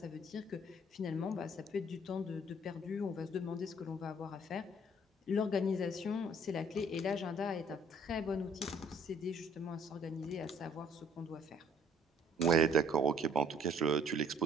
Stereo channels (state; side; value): normal; both; correlation 0.58